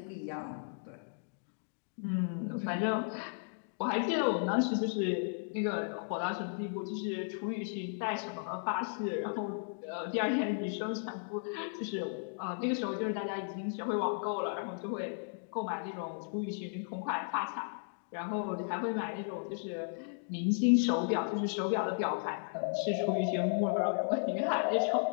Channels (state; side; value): silent; right; digital silence